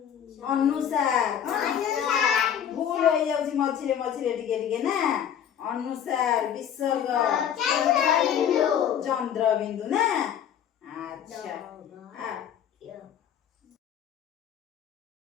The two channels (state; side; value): quieter; right; 9.2 dB